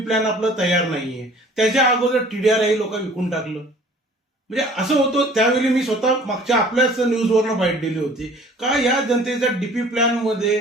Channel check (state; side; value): normal; both; correlation 0.51